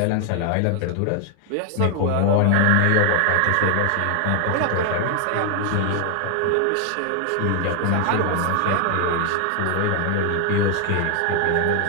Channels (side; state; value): both; different; correlation 0.00